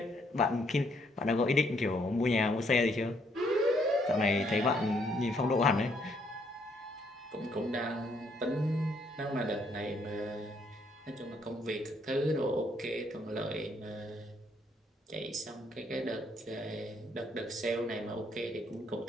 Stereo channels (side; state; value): both; normal; correlation 0.70